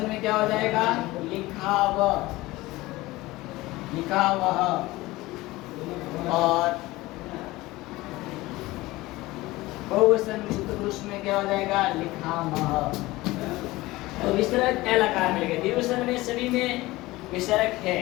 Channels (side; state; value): right; quieter; 19.3 dB